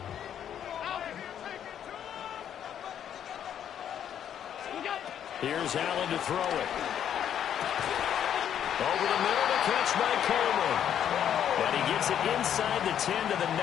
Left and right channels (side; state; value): right; quieter; 9.5 dB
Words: Here's Allen to throw it. Over the middle, the catch by Coleman. And he gets it inside the 10 to the